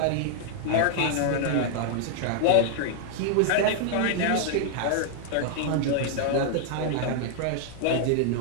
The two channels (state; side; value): different; both; correlation -0.01